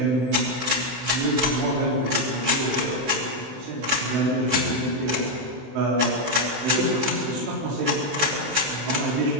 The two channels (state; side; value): late; left; 15 ms